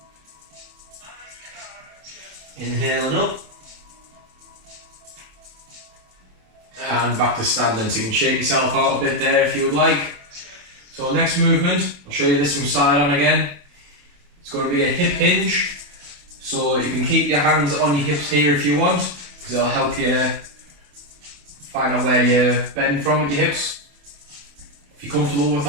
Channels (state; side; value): late; left; 28 ms